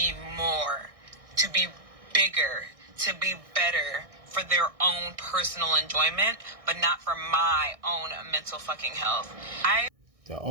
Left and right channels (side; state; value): left; late; 1.6 ms